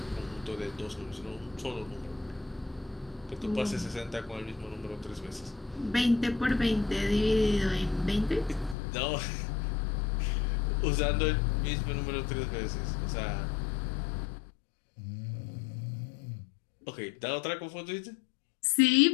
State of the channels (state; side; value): drops out; right; at 8.8 s